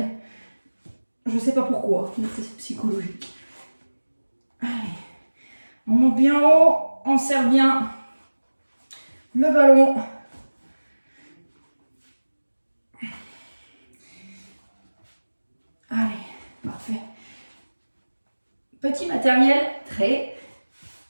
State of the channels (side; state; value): both; inverted; correlation -1.00